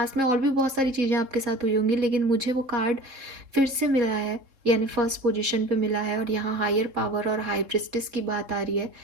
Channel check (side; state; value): left; late; 3.7 ms